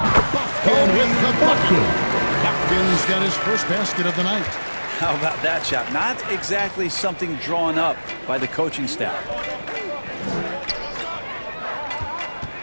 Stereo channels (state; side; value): inverted; both; correlation -1.00